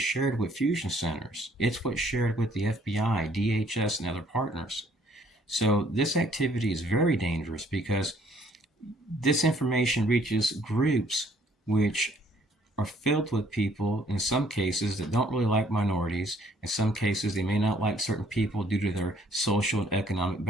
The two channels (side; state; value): both; normal; correlation 0.62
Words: shared with fusion centers. It's what's shared with the FBI, DHS, and other partners. So this activity is very dangerous because this information reaches groups which are filled with people, in some cases, that don't really like minorities. In some cases, they may not like certain people due to their social and economic